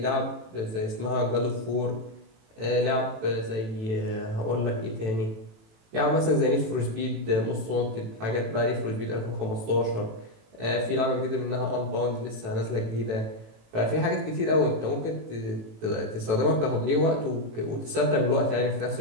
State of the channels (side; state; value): left; late; 18 ms